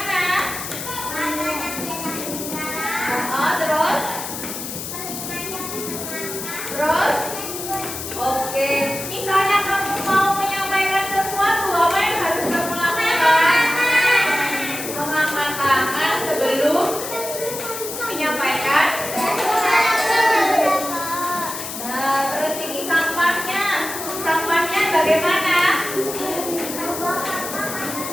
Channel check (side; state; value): left; noise; hiss, 7 dB below the sound